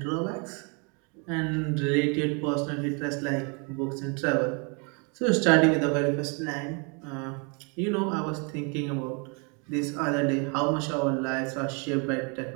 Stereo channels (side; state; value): left; quieter; 34.4 dB